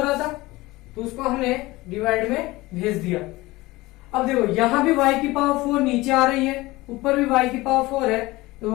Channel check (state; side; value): quieter; right; 20.1 dB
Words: रहा था, तो उसको हमने डिवाइड में भेज दिया। अब देखो यहां भी y की पावर 4 नीचे आ रही है, ऊपर भी y की पावर 4 है, तो